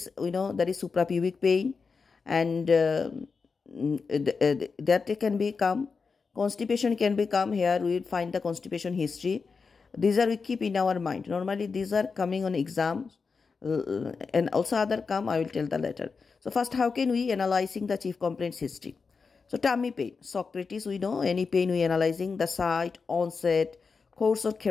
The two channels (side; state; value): right; quieter; 4.9 dB